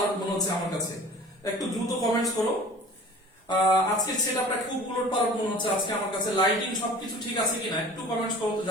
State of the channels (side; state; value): both; normal; correlation 0.44